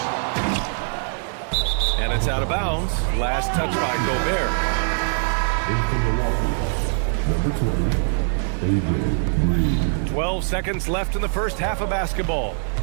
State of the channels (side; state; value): left; silent; 64 dB below the other